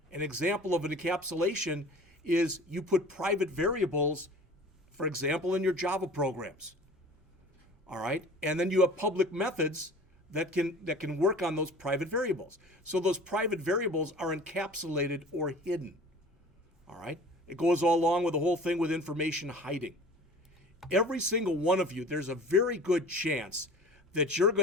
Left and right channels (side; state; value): both; normal; correlation 0.43